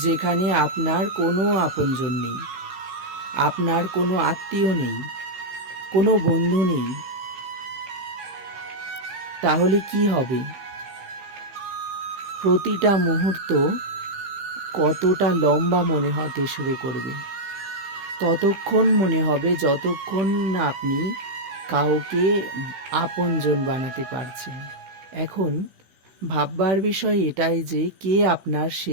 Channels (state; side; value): late; left; 15 ms